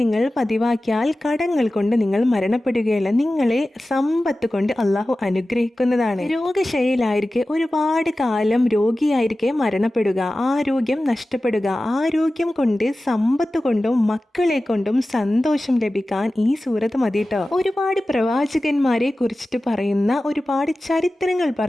പതിവാക്കിയാൽ കടങ്ങൾ കൊണ്ട് നിങ്ങൾ മരണപ്പെടുകയില്ല. നിങ്ങളെ സമ്പത്ത് കൊണ്ട് അള്ളാഹു അനുഗ്രഹിക്കുന്നതാണ്. രോഗശൈലിയിലായിരിക്കെ ഒരുപാട് കാലം രോഗിയായിരിക്കെ മരണപ്പെടുക, ആരോഗ്യം നഷ്ടപ്പെടുക. ആരോഗ്യം കൊണ്ട് സമ്പത്ത് കൊണ്ടും മക്കളെ കൊണ്ടും സന്തോഷം ലഭിക്കാൻ ഈ സൂറത്ത് മതിട്ടോ. ഒരുപാട് പ്രവാചകന്മാരെ കുറിച്ചിട്ട് പറയുന്ന ഒരുപാട് ചരിത്രങ്ങൾ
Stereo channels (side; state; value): both; normal; correlation 0.95